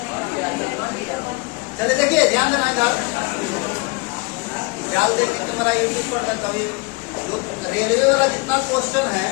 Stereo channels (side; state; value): right; quieter; 27.3 dB